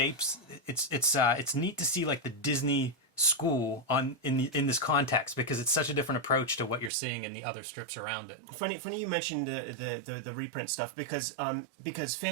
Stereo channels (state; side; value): drops out; left; at 6.9 s